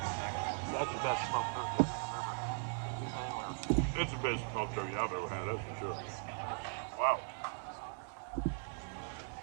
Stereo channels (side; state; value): left; silent; 52 dB below the other